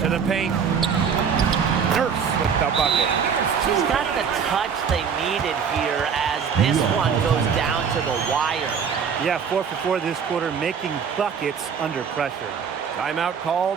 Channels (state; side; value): quieter; left; 6.8 dB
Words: To the paint. Nurse with the bucket. She's got the touch they needed here as this one goes down to the wire. Yeah, 4 for 4 this quarter, making buckets under pressure. Timeout called